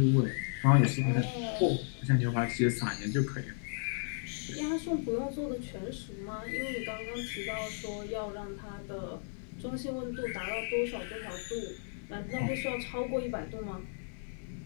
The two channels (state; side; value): silent; right; digital silence